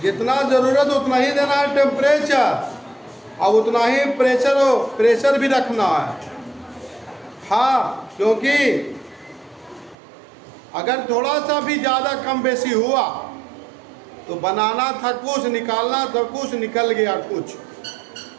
जितना जरूरत उतना ही देना है टेम्परेचर, और उतना ही प्रेशर भी रखना है। हाँ, क्योंकि अगर थोड़ा सा भी ज़्यादा कम बेसी हुआ तो बनाना था कुछ, निकालना था कुछ, निकल गया कुछ।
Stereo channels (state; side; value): drops out; left; at 10.0 s